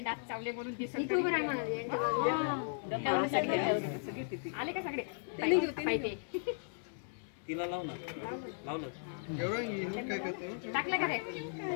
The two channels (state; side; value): silent; right; digital silence